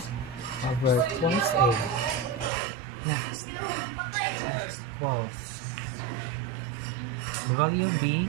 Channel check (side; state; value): left; drops out; at 2.5 s